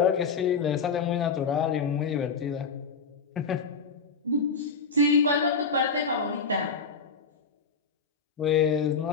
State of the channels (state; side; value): quieter; right; 4.9 dB